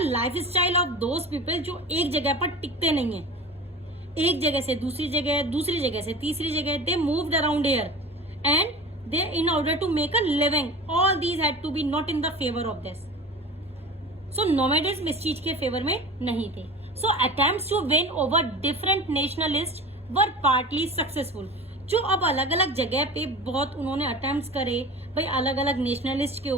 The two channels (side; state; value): both; normal; correlation 0.35